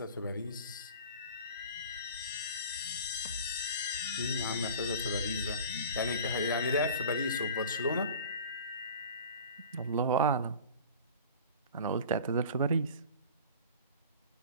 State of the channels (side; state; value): both; inverted; correlation -0.41